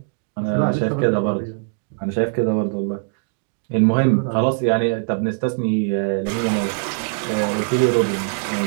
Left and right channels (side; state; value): left; silent; digital silence